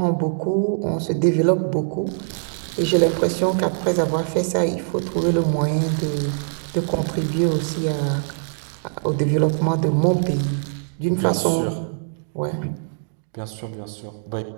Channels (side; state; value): left; silent; digital silence